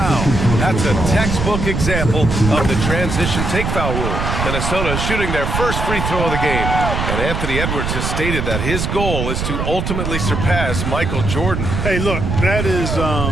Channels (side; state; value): right; noise; rumble, 2 dB below the sound